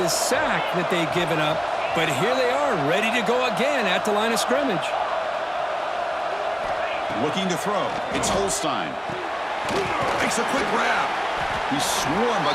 sack that they'd given up. But here they are, ready to go again at the line of scrimmage. Looking to throw. It's Holstein. Makes a quick grab. He's swarmed by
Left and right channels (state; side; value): identical; both; correlation 1.00